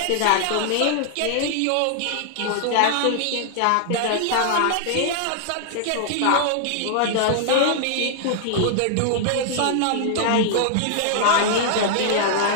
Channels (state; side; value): different; both; correlation -0.01